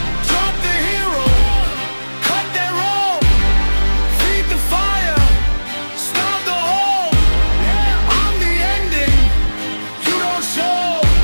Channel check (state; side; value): inverted; both; correlation -1.00